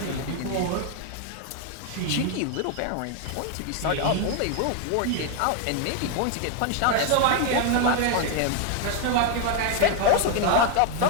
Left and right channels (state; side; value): different; both; correlation 0.01